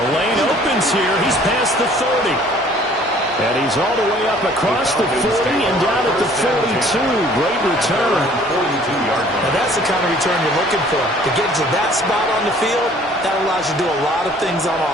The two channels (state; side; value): normal; both; correlation 0.55